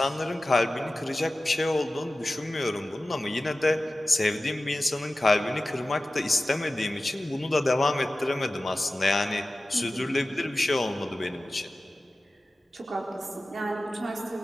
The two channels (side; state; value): both; normal; correlation 0.96